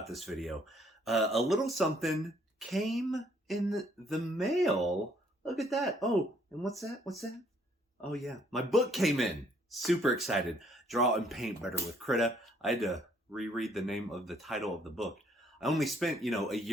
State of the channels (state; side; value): normal; both; correlation 0.65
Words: this video. A little something came in the mail. Look at that. Oh, and what's that? What's that? Oh yeah, my book came in. Super excited. Draw and Paint Better with Krita. I had to reread the name of the title of the book. I only spent, a